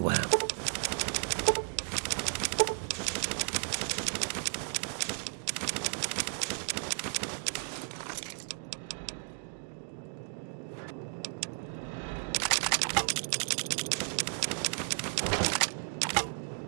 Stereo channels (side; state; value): left; silent; 55 dB below the other